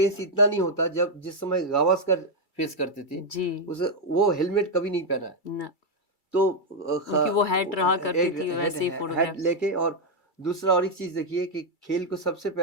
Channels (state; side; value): late; right; 2.3 ms